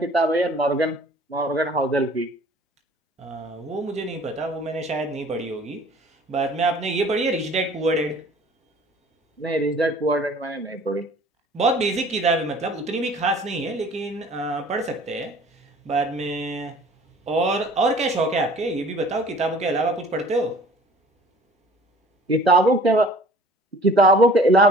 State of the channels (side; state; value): both; normal; correlation 0.50